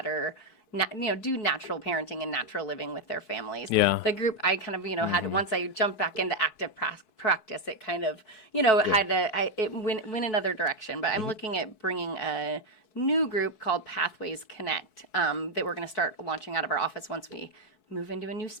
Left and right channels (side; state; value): right; late; 4.6 ms